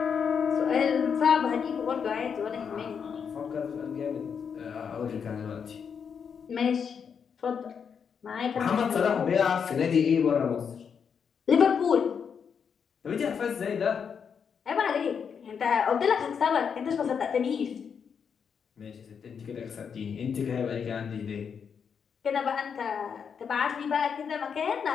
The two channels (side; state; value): right; quieter; 6.8 dB